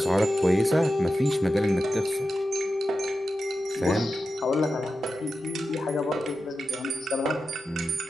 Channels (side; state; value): both; normal; correlation 0.91